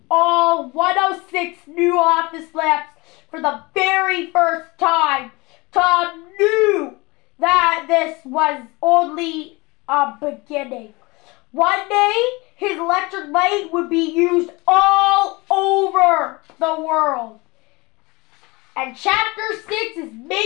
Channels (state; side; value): quieter; right; 24.5 dB